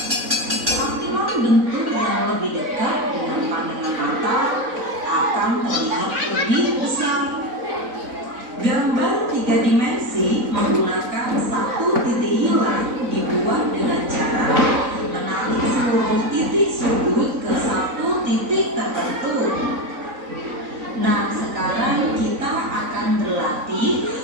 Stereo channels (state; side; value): late; left; 3.9 ms